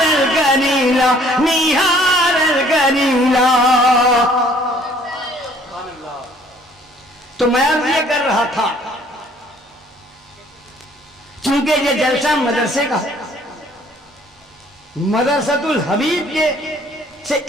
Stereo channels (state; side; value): normal; both; correlation 0.59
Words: करीला, निहारल करीला। तो मैं अब ये कर रहा था, चूंकि ये जलसा मदरसे का, मदरसतुल हबीब के से